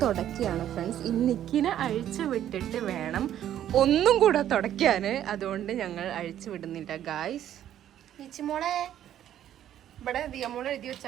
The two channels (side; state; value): left; quieter; 11.2 dB